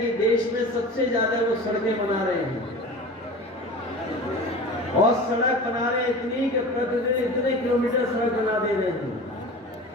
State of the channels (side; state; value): both; normal; correlation 0.36